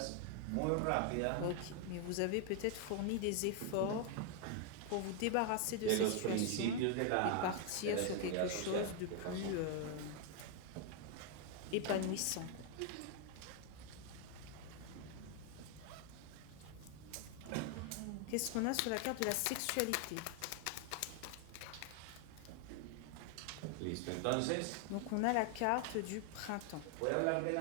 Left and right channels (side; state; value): both; different; correlation 0.00